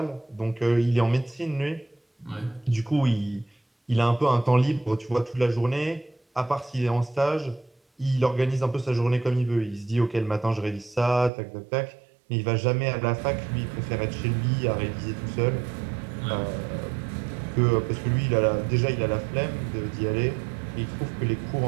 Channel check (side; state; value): left; drops out; at 11.3 s